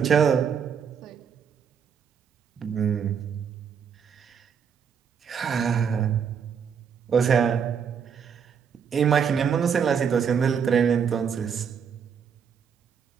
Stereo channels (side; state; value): left; quieter; 7.1 dB